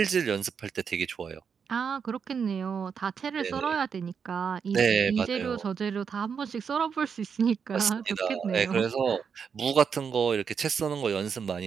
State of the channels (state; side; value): quieter; left; 6.5 dB